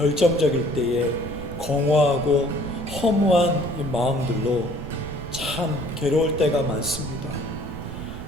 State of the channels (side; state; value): right; noise; rumble, 10 dB below the sound